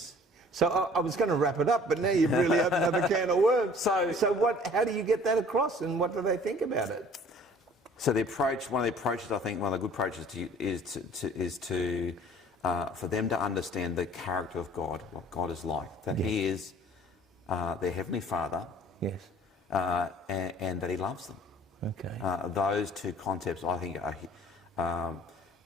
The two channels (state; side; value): normal; both; correlation 0.51